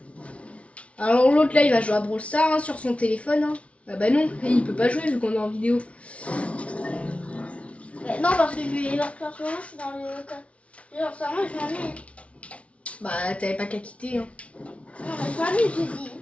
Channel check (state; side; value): late; right; 0.063 ms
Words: Alors, l'autre là, il va jouer à Brawl Stars hein, sur son téléphone. Hein. Ah bah non, il peut pas jouer vu qu'on est en vidéo. Mais non, parce que je suis dans le. Genre, ça, moi, je m'ennuie. Bah, t'avais pas qu'à quitter. Hein. Non, mais je m'ennuie, j'ai dit.